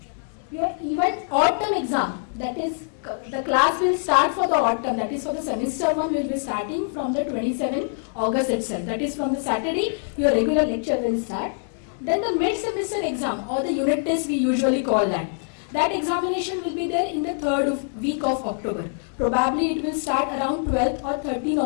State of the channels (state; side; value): silent; right; digital silence